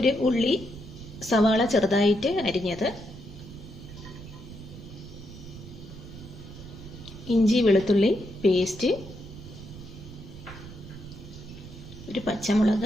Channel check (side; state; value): right; noise; rumble, 14 dB below the sound